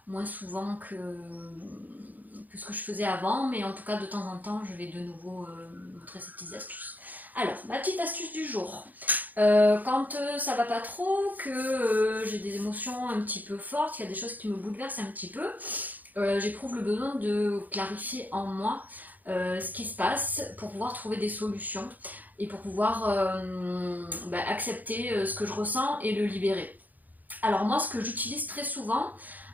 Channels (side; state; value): left; late; 0.082 ms